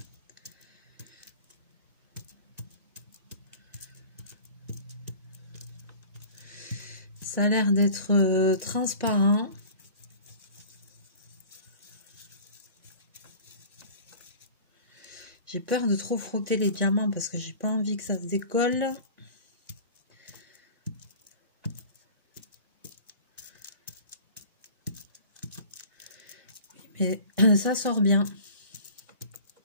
Ça a l'air d'être transparent. J'ai peur de trop frotter les diamants parce que j'ai pas envie que ça se décolle. Mais ça sort bien.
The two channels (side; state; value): both; inverted; correlation -0.42